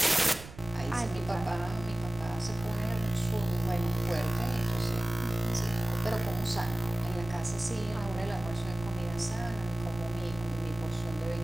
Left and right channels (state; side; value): noise; right; rumble, 15 dB below the sound